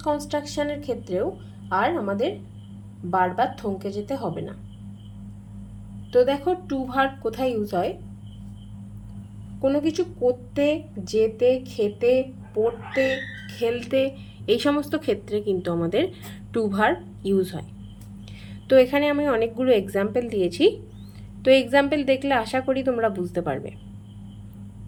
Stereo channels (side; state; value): both; identical; correlation 1.00